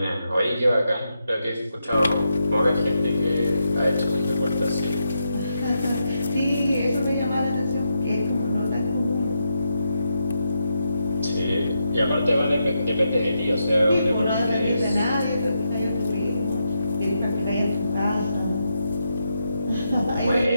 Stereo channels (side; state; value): both; inverted; correlation -0.83